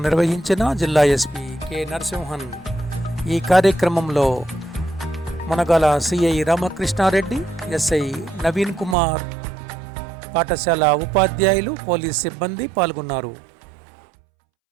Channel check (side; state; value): left; drops out; at 9.0 s